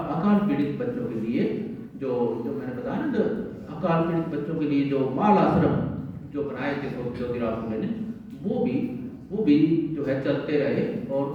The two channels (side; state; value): both; identical; correlation 1.00